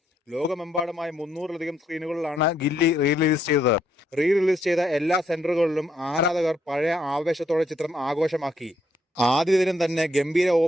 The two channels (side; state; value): both; normal; correlation 0.73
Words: ലോകമെമ്പാടുമായി 300-ലധികം സ്ക്രീനുകളിലാണ് ഗില്ലി റിലീസ് ചെയ്തത്. റിലീസ് ചെയ്ത എല്ലാ സെന്ററുകളിലും ആരാധകർ പഴയ ആവേശത്തോടെ ചിത്രം ആഘോഷമാക്കി. ആദ്യ ദിനം തന്നെ ഗംഭീര